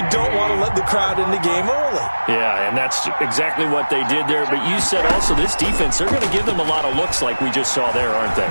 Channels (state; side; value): inverted; both; correlation -1.00